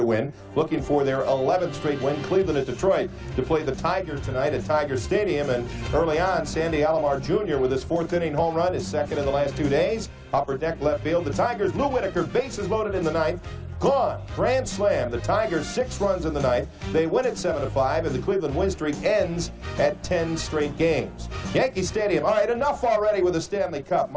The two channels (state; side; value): identical; both; correlation 1.00